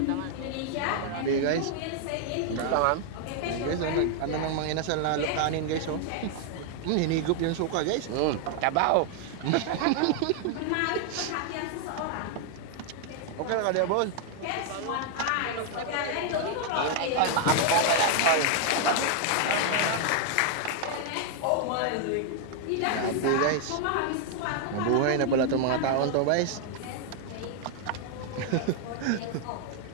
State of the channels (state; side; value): different; both; correlation 0.00